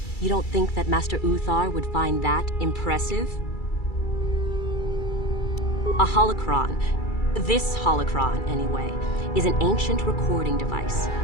You don't think that Master Uthar would find that impressive? A holocron, this holocron anyway, is an ancient recording device.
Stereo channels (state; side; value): late; right; 2.3 ms